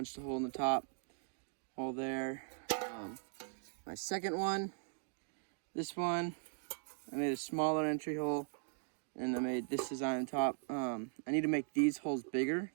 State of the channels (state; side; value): silent; left; digital silence